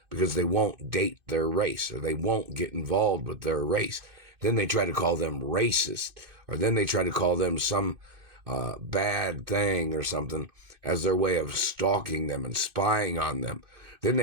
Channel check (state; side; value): late; left; 2.5 ms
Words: because they won't date their race, or they won't get involved with their race. Then they try to call them racist, or then they try to call them some bad thing or something as their way of stalking them and spying on them. Then